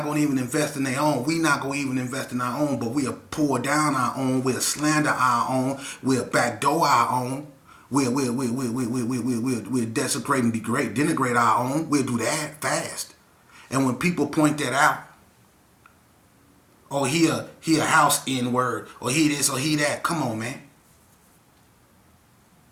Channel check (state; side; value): identical; both; correlation 1.00